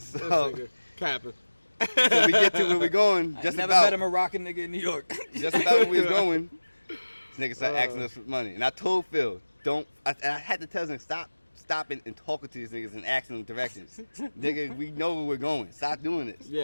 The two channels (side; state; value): both; inverted; correlation -1.00